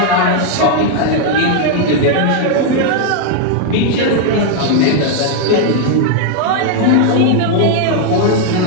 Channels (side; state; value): both; different; correlation 0.00